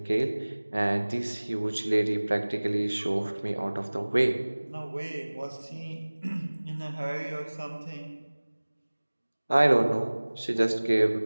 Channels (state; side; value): inverted; both; correlation -1.00